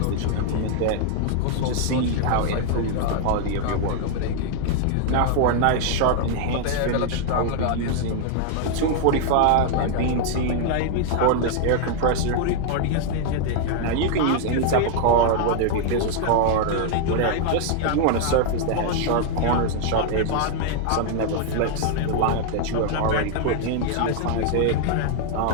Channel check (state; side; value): different; both; correlation 0.00